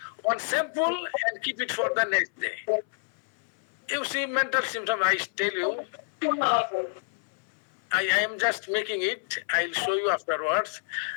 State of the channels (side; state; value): right; silent; 59 dB below the other